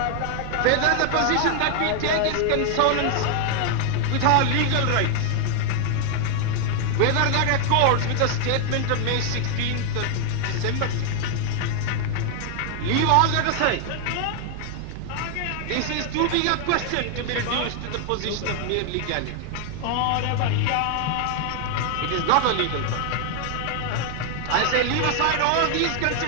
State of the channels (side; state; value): both; different; correlation 0.00